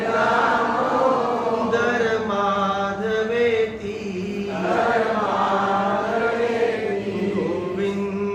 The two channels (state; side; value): identical; both; correlation 1.00